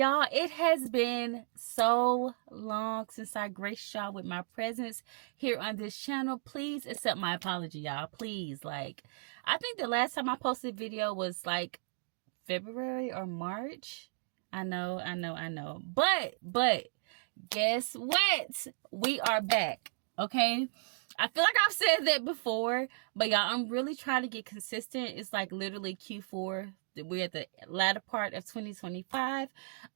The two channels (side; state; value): left; silent; digital silence